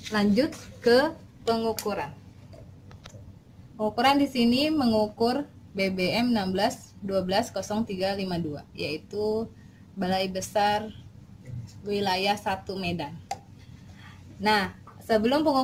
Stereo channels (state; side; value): identical; both; correlation 1.00